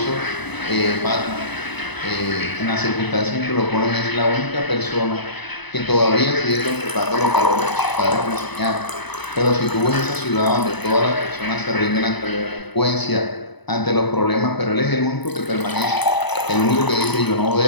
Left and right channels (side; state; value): right; late; 1.0 ms